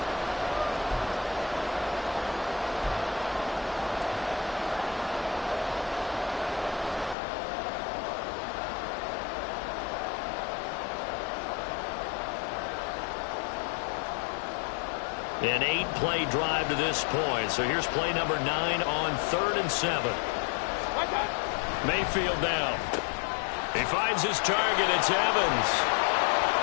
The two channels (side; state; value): right; drops out; at 7.2 s